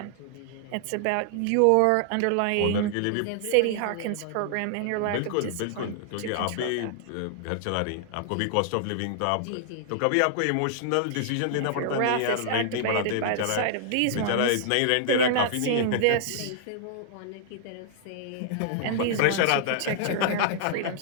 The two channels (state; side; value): different; both; correlation -0.01